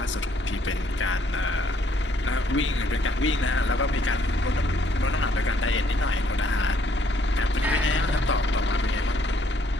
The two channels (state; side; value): normal; both; correlation 0.67